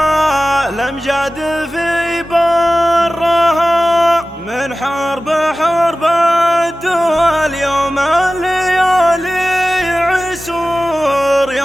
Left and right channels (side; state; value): both; normal; correlation 0.96